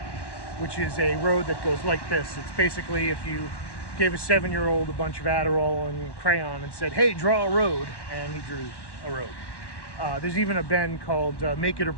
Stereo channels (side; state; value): right; late; 1.1 ms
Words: which is a road that goes like this. It's basically if you gave a 7-year-old a bunch of Adderall and crayon and said, hey, draw a road, and he drew a road. There's even a bend called Make It or